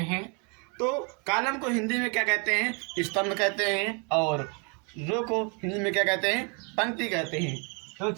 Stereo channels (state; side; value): quieter; left; 34.8 dB